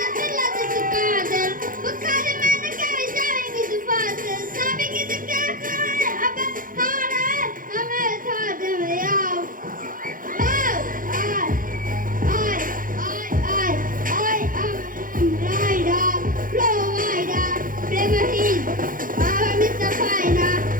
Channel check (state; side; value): late; left; 0.40 ms